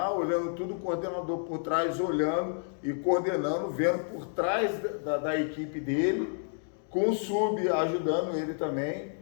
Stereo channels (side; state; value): right; silent; digital silence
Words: olhando tudo, o coordenador por trás, olhando e coordenando, vendo por trás da equipe dele, com o sub ajudando ele também.